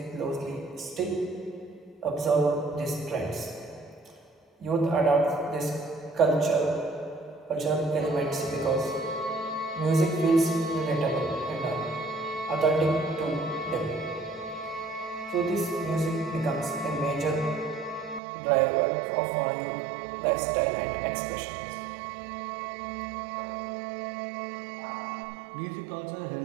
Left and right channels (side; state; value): left; drops out; at 18.2 s